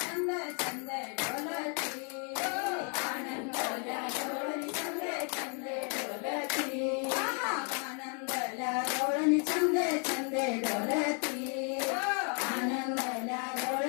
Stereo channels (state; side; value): quieter; right; 39.9 dB